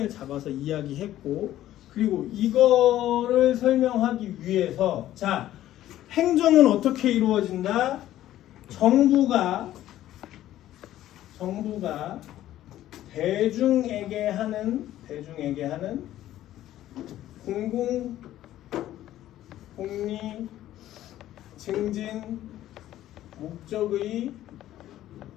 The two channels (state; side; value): quieter; right; 13.4 dB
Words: 잡아서 이야기했고, 그리고 이거를 설명하기 위해서 자, 행정은 어떻게 이루어진다? 정부가 대중에게 하는 공공 공리 증진 목적의